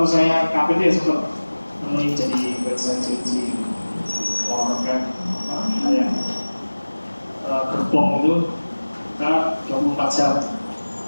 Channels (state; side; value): inverted; both; correlation -1.00